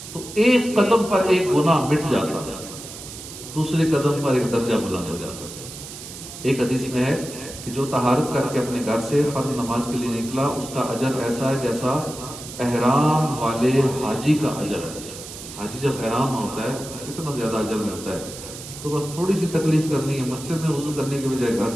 تو ایک قدم پر ایک گناہ مٹ جاتا ہے، دوسرے قدم پر ایک درجہ بلند ہو جاتا ہے. ایک حدیث میں ہے کہ جو طہارت کر کے اپنے گھر سے فرض نماز کے لیے نکلا اس کا اجر ایسا ہے جیسا احرام والے حاجی کا اجر ہے. حاجی جب احرام ہوتا ہے کتنا زیادہ اجر ملتا ہے. تو بس تھوڑی سی تکلیف کرنی ہے، مسجد میں وضو کرنے کے بجائے گھر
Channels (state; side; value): noise; right; hiss, 12 dB below the sound